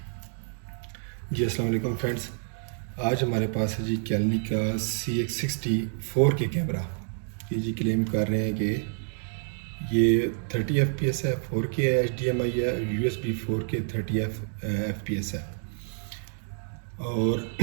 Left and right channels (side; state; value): left; silent; 59 dB below the other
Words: अस्सलाम वालेकुम फ्रेंड्स। आज हमारे पास है जी कैलनी का CX60 4K कैमरा। ये जी क्लेम कर रहे हैं कि ये 30 FPS है, 4K है, HDMI है, USB 4K 30 FPS है। और